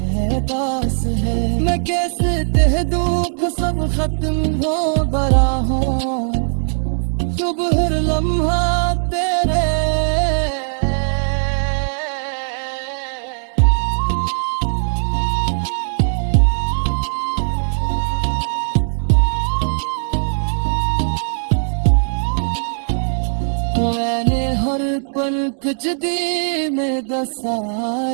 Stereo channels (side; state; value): left; silent; digital silence